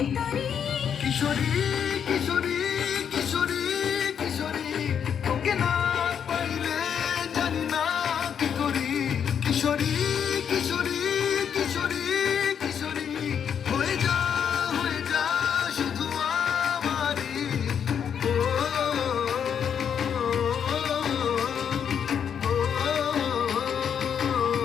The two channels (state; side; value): quieter; right; 7.9 dB